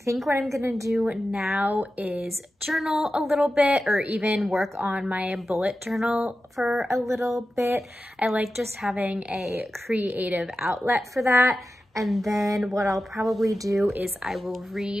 what I'm gonna do now is journal a little bit, or even work on my bullet journal for a little bit. I like just having a creative outlet for that. And then what I'll probably do is I will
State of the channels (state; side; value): normal; both; correlation 0.92